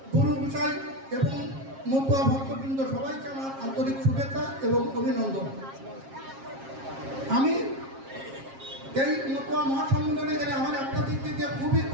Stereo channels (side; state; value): left; late; 7.4 ms